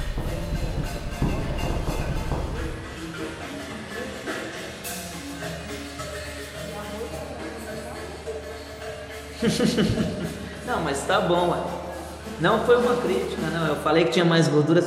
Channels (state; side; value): identical; both; correlation 1.00